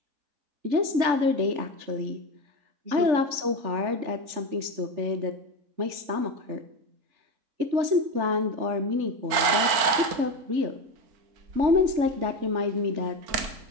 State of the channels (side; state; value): left; late; 4.4 ms